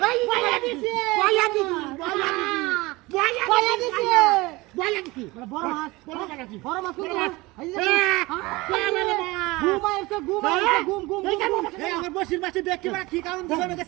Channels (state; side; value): quieter; left; 22.1 dB